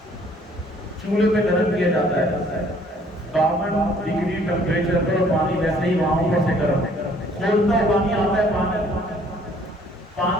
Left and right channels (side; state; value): both; normal; correlation 0.59